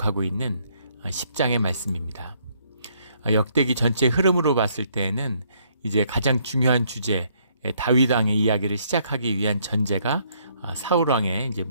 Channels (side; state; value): both; inverted; correlation -0.68